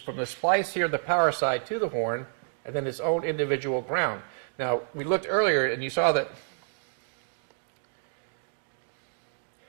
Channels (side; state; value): left; silent; digital silence